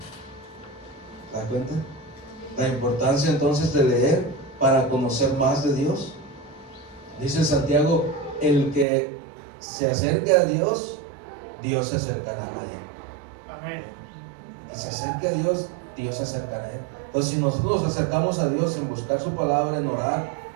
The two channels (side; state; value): left; drops out; at 8.8 s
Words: ¿Se da cuenta? La importancia entonces de leer para conocer más de Dios. Dice Santiago, el que se acerque a Dios, Dios se acercará a él. Amén. Y se acerque a Dios, Dios se acercará a él. Entonces, si nosotros nos acercamos a Dios en buscar su palabra, en orar,